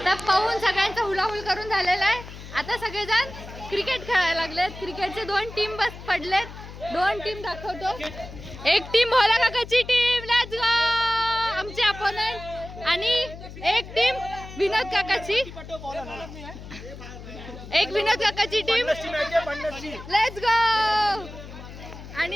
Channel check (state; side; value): noise; left; hum, 14 dB below the sound